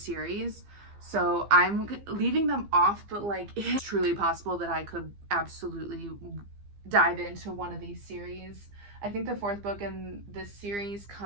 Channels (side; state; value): left; late; 15 ms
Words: So I'm leaving them off, but like it's truly possible that I could absolutely dive into one of these series. I think the 4th book in this series